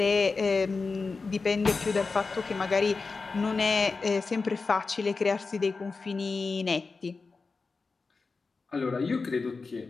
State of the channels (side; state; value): right; quieter; 4.3 dB